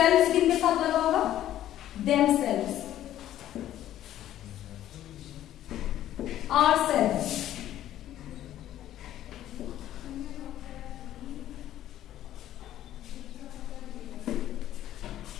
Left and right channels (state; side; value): quieter; right; 12.5 dB